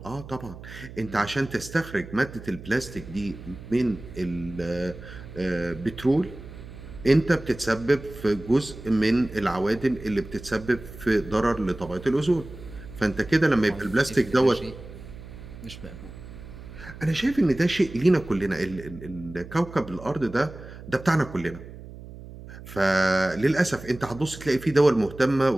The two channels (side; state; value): right; noise; hum, 15 dB below the sound